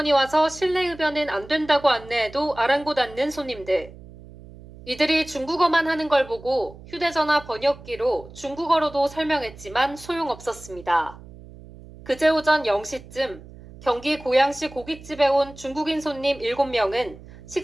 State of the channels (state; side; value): noise; right; hum, 18 dB below the sound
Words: 와서 실내 흡연은 안 된다고 안내해도 아랑곳 않는 손님들. 이들이 중국어만 하는 걸 보고 휴대전화 번역기로 중국어로도 설명했지만 소용없었습니다. 그제 오전 0시쯤 경기 고양시 고깃집에 온 중국인 손님 7명은